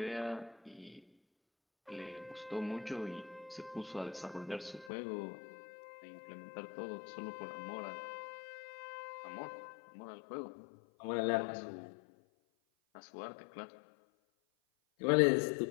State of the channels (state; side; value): drops out; right; at 4.9 s